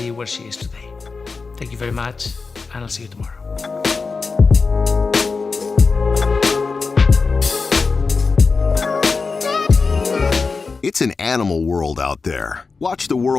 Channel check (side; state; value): right; quieter; 4.5 dB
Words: where she is today. Thank you very much, and I'll see you tomorrow. It's an animal world out there. Watch the